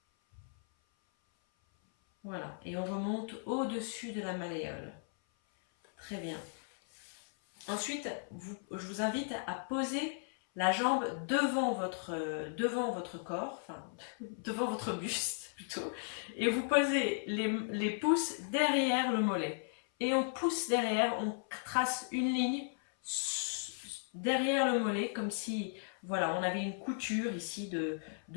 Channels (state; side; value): silent; right; 54 dB below the other